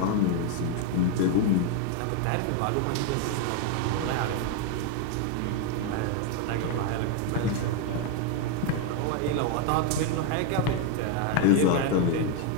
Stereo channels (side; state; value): both; different; correlation 0.01